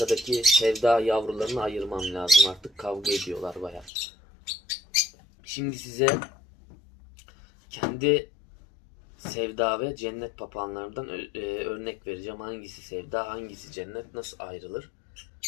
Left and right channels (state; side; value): drops out; right; at 3.9 s